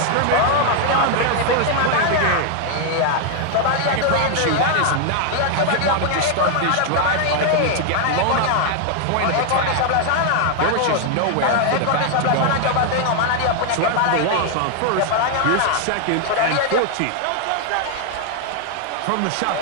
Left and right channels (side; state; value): both; different; correlation 0.00